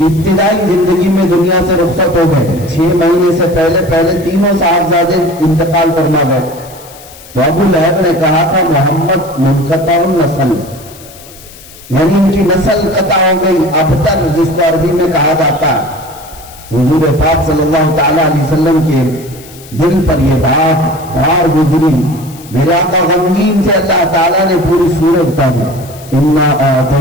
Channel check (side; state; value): left; noise; hiss, 20 dB below the sound